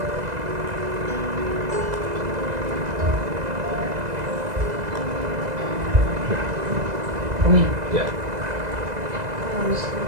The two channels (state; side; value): late; left; 2.0 ms